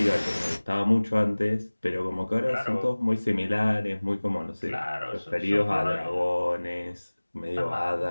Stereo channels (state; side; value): inverted; both; correlation -1.00